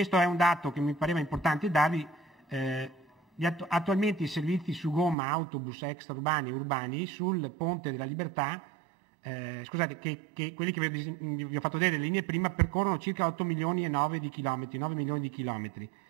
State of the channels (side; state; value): left; drops out; at 5.2 s